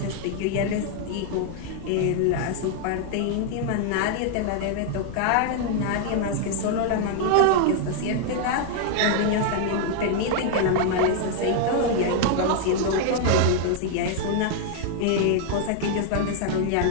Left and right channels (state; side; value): different; both; correlation 0.00